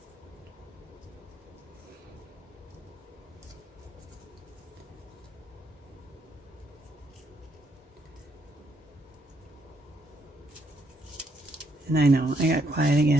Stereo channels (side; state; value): both; normal; correlation 0.73